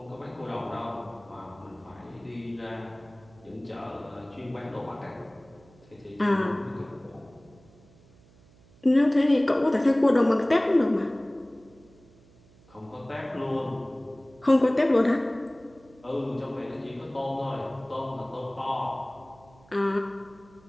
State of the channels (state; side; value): noise; right; hum, 27 dB below the sound